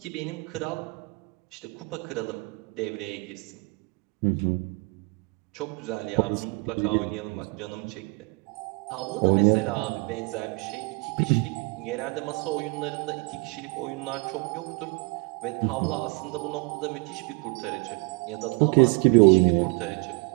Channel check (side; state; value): left; quieter; 28.6 dB